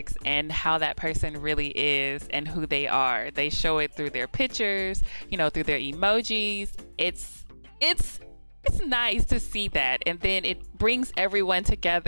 and how that person really is and who they are. They show it through their pictures, through their emojis. It's it's nice to see that, and then it brings everyone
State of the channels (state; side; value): inverted; both; correlation -1.00